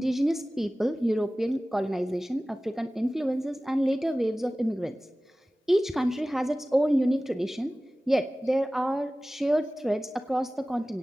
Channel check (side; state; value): both; normal; correlation 0.97